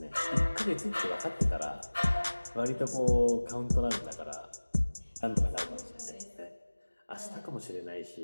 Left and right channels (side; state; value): both; inverted; correlation -1.00